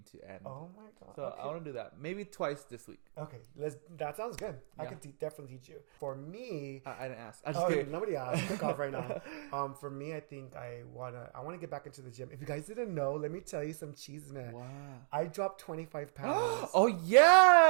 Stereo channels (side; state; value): left; silent; digital silence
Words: to end. Oh my God. So okay. I want to do that. Maybe twice this week. Okay, that sounds good. I Yeah. can definitely teach you. For me, I didn't ask. I just kidding. Nobody asked. Pick off right now. For me, I think I wanna get back into the gym. If you guys didn't know, let me tell you some cheese, man. Wow. I dropped 25 pounds. Oh